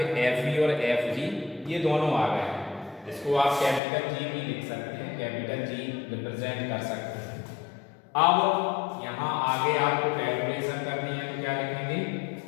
Fe और Fg ये दोनों आ गए हैं। इसको आप कैपिटल G भी लिख सकते हैं, कैपिटल G रिप्रेजेंट कर सकते हैं। अब यहाँ आगे आपको कैलकुलेशन करनी है तो क्या लिखेंगे,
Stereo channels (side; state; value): right; drops out; at 3.8 s